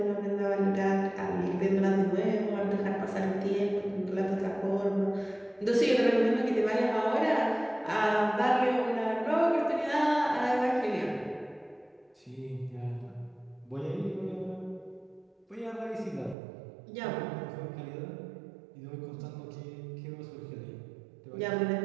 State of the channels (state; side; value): drops out; left; at 16.4 s